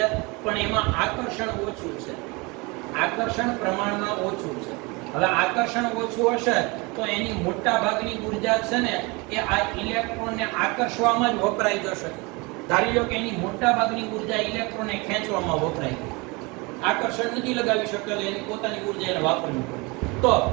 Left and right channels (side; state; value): left; quieter; 26.6 dB